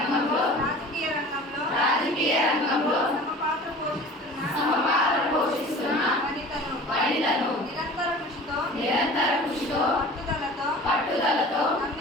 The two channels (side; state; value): both; normal; correlation 0.42